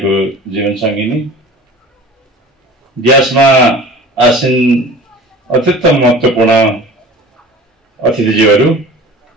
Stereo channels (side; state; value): both; normal; correlation 0.41